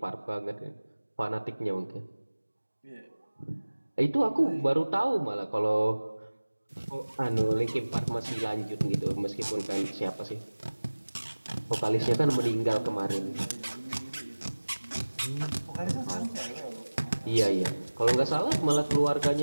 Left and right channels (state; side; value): inverted; both; correlation -1.00